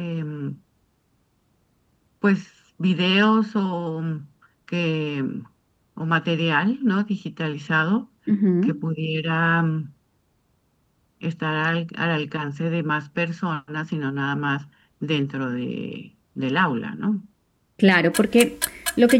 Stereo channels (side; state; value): both; identical; correlation 1.00